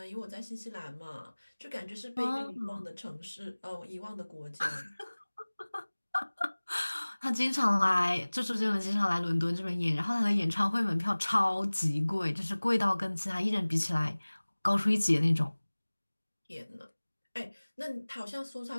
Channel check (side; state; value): both; inverted; correlation -1.00